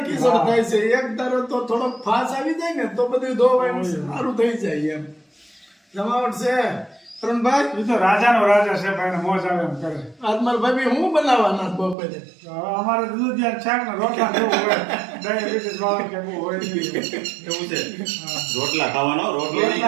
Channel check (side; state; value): left; drops out; at 12.0 s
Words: કીચડ થાય છે. એક ધારો તો થોડોક ફાસ આવી જાય ને તો બધું ધોવાય સારું થઈ જાય એમ. જમાવટ છે તરુણભાઈ. એ તો રાજાનો રાજા છે ભાઈ, મોજ આવે એમ કરે. આજ મારા ભાઈ હું બનાવવાના બપોરે? અમારે દૂધિયા શાક ને રોટલા જેવું હોય. ડાયાબિટીસ વાળા કે એવું હોય એવું છે. રોટલા ખાવાનો. રોટલી